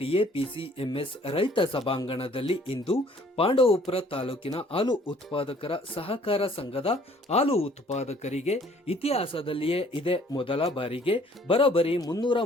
ರೈತ ಸಭಾಂಗಣದಲ್ಲಿ ಇಂದು ಪಾಂಡವಪುರ ತಾಲೂಕಿನ ಹಾಲು ಉತ್ಪಾದಕರ ಸಹಕಾರ ಸಂಘದ ಹಾಲು ಉತ್ಪಾದಕರಿಗೆ ಇತಿಹಾಸದಲ್ಲಿಯೇ ಇದೇ ಮೊದಲ ಬಾರಿಗೆ ಬರೋಬ್ಬರಿ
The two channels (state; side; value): normal; both; correlation 0.58